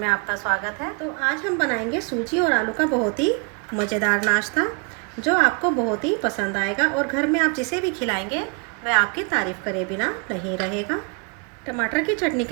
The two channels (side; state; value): left; quieter; 34.9 dB